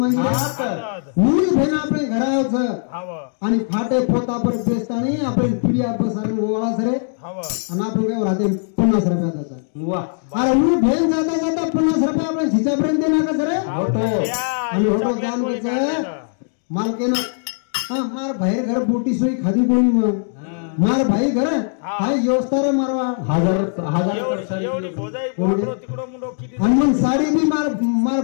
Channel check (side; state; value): right; silent; digital silence